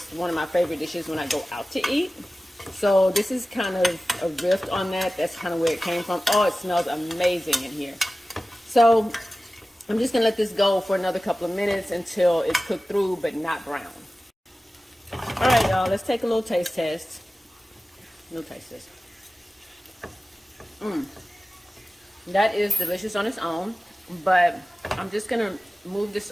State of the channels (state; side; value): normal; both; correlation 0.96